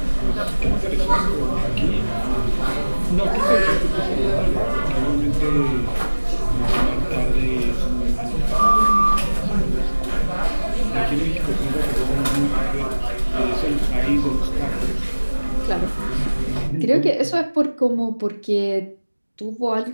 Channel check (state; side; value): inverted; both; correlation -1.00